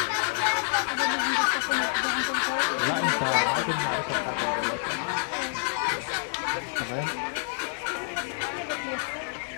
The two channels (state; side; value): silent; right; 60 dB below the other